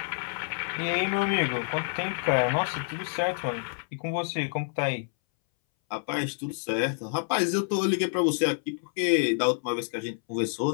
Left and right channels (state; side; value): silent; right; 59 dB below the other